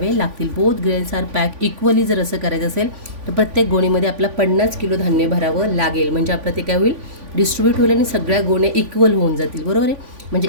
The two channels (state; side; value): late; left; 3.5 ms